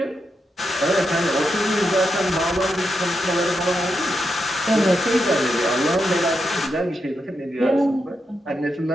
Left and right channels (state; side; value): normal; both; correlation 0.85